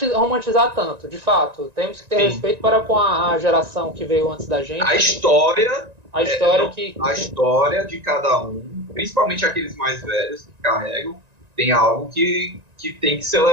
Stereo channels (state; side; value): late; left; 1.9 ms